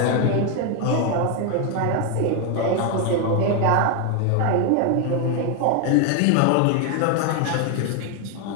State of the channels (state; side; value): different; both; correlation 0.01